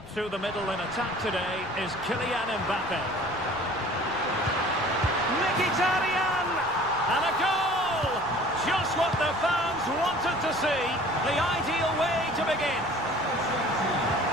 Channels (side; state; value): left; noise; rumble, 25 dB below the sound